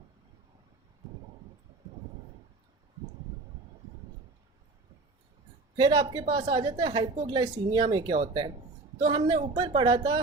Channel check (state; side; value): quieter; left; 3.5 dB